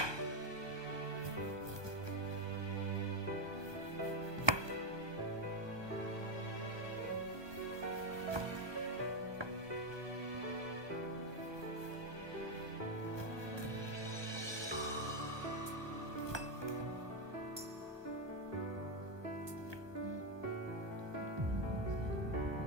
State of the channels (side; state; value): left; late; 1.2 ms